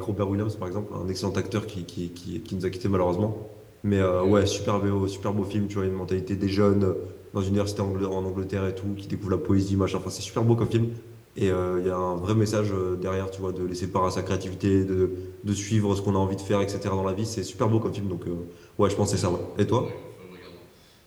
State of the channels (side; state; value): both; identical; correlation 1.00